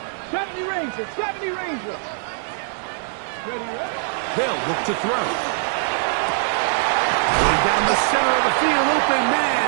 70 Rangers. 70 Rangers. Ready, ready? They'll look to throw. Going down the center of the field, open man,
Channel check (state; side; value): silent; left; 62 dB below the other